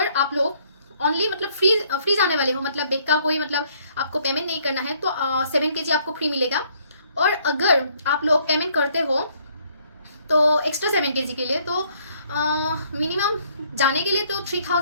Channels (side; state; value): both; inverted; correlation -0.65